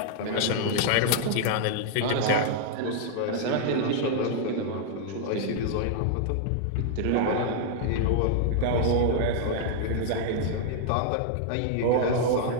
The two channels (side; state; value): both; different; correlation -0.01